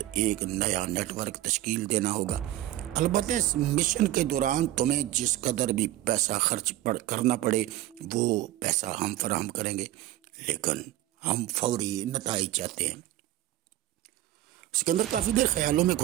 ایک نیا نیٹ ورک تشکیل دینا ہوگا۔ البتہ اس مشن کے دوران تمہیں جس قدر بھی پیسہ خرچ کرنا پڑے وہ پیسہ ہم فراہم کریں گے، لیکن ہم فوری نتائج چاہتے ہیں۔ سکندر کافی دیر خیالوں میں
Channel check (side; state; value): left; quieter; 14.9 dB